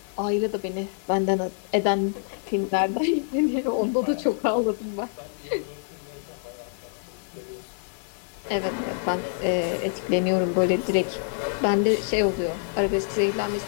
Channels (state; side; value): silent; right; digital silence